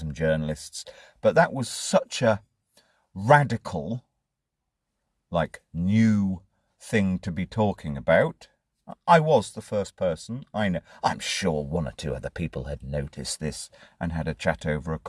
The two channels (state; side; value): identical; both; correlation 1.00